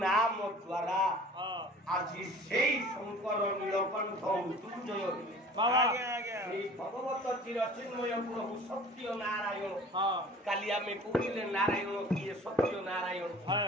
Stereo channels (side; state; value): both; normal; correlation 0.46